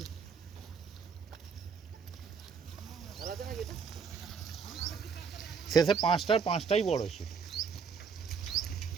শেষে পাঁচটাই বড় ছিল।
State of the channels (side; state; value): left; quieter; 6.0 dB